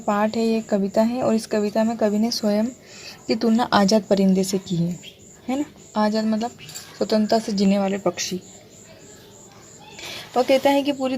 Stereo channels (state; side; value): identical; both; correlation 1.00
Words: है, ये कविता है और इस कविता में कवि ने स्वयं की तुलना आज़ाद परिंदे से की है ना। आज़ाद मतलब स्वतंत्रता से जीने वाले पक्षी। वह कहता है कि पूरी